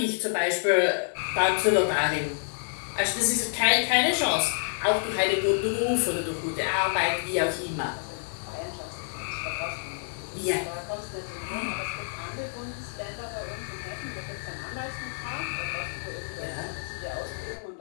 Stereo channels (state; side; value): silent; right; digital silence